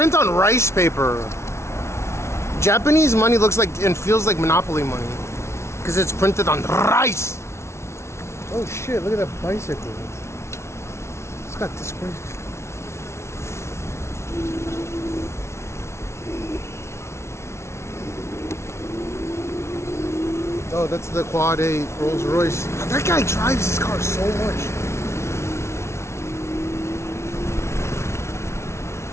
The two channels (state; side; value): late; right; 0.13 ms